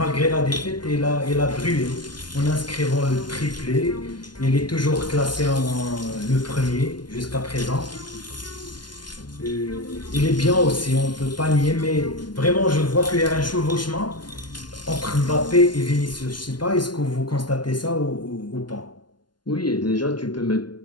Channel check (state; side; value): late; right; 0.71 ms